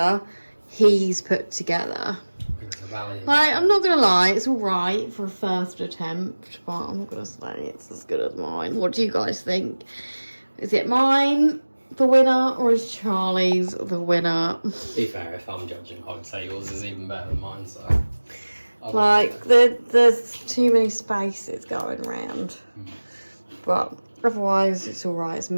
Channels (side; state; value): both; inverted; correlation -1.00